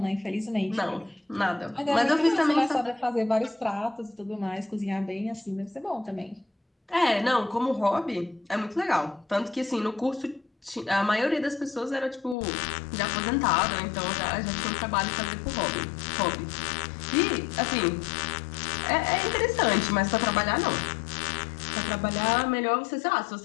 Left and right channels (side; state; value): right; drops out; at 12.4 s